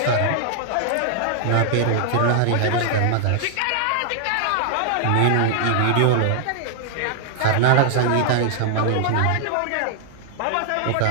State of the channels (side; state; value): both; different; correlation -0.01